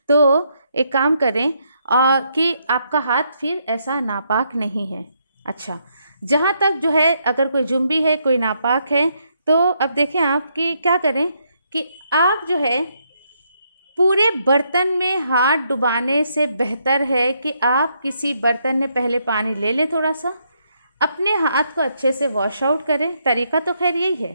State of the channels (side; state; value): both; inverted; correlation -0.76